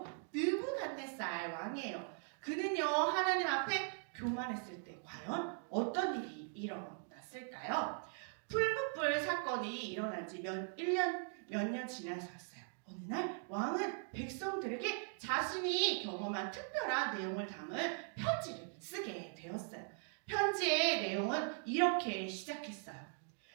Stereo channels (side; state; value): left; silent; 51 dB below the other